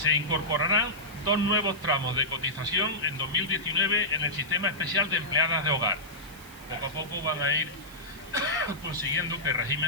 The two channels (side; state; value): right; noise; hiss, 21 dB below the sound